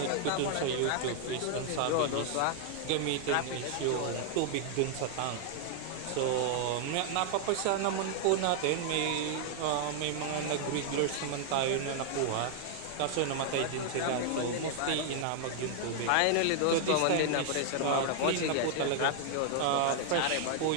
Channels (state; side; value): different; both; correlation 0.00